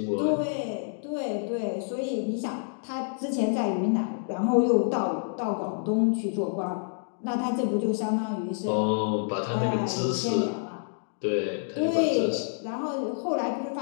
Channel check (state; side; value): silent; right; digital silence